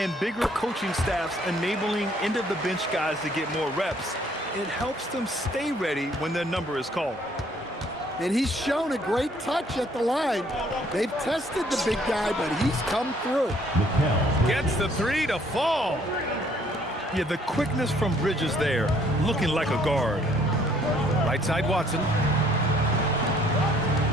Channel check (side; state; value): both; normal; correlation 0.62